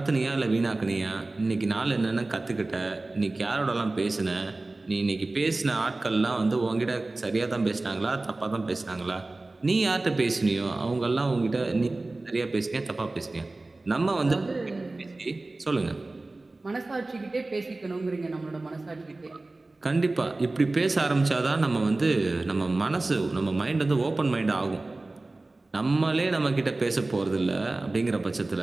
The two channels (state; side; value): quieter; left; 3.1 dB